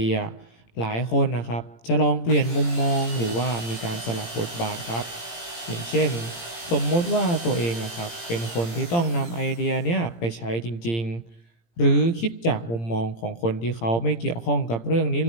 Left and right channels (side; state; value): right; late; 17 ms